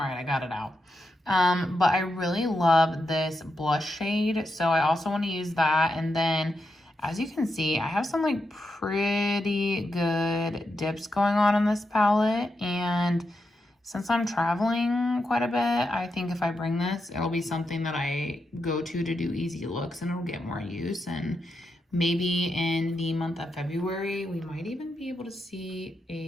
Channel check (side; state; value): both; normal; correlation 0.85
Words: right, I got it out. But I really love this blush shade. So I also want to use that. And then as you can see, I have some like pretty good dips going on in this palette. And since I'm traveling quite a bit, I think if I bring this, it'll be something that I go to do easy looks, and it'll get more use. And maybe in the month of February, we might even be able to see